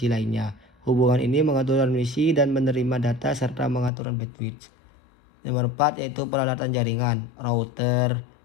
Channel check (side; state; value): right; drops out; at 3.9 s